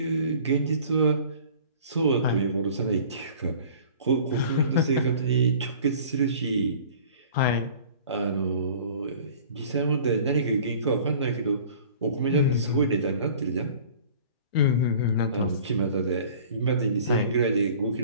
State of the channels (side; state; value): both; inverted; correlation -0.46